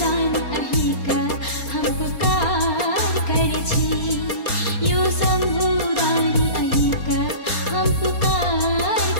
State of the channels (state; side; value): late; right; 4.3 ms